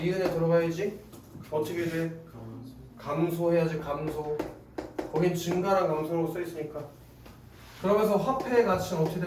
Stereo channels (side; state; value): both; identical; correlation 1.00